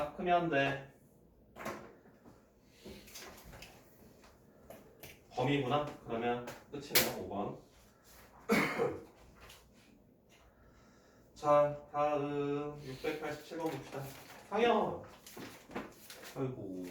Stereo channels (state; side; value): identical; both; correlation 1.00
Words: 크면 돼. 범위구나? 그러면 끝이네요. 5번. 자, 다음 687번 봅시다. 상영. 아이고,